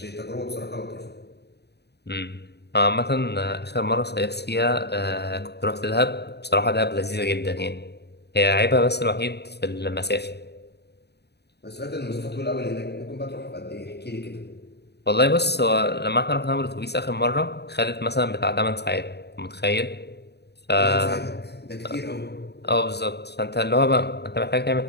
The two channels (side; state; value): right; late; 0.48 ms